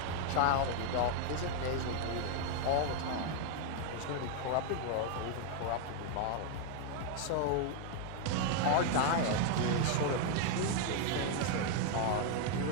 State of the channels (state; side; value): different; both; correlation 0.00